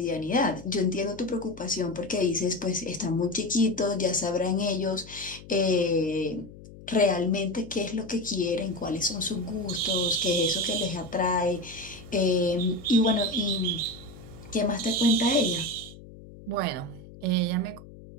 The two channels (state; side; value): noise; left; hum, 18 dB below the sound